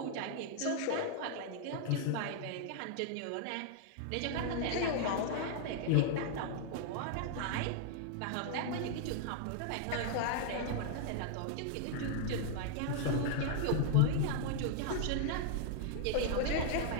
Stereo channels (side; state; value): both; different; correlation 0.00